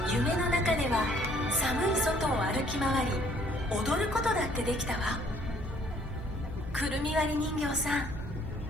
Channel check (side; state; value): both; normal; correlation 0.61